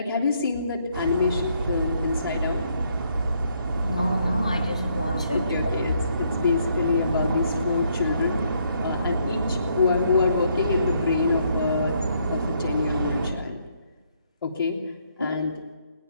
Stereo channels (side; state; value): both; inverted; correlation -0.71